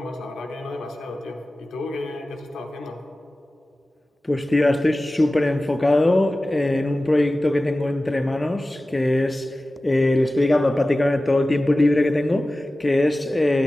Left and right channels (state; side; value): normal; both; correlation 0.96